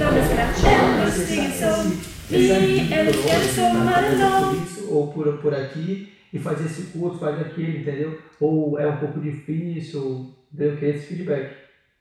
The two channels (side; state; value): both; identical; correlation 1.00